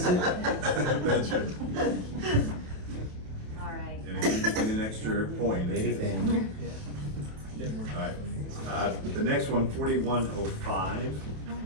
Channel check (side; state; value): left; late; 28 ms